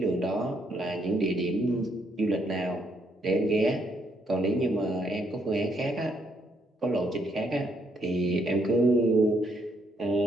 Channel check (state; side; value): normal; both; correlation 0.73